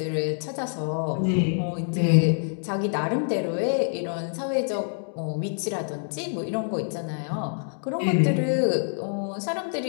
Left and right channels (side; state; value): right; silent; digital silence